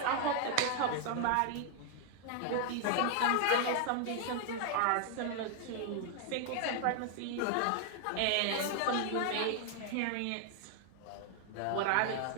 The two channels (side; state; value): both; different; correlation 0.00